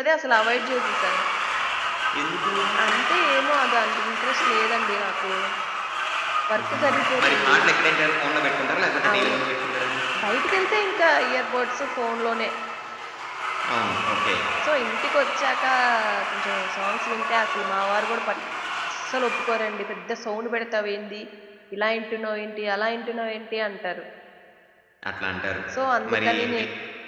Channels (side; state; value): both; identical; correlation 1.00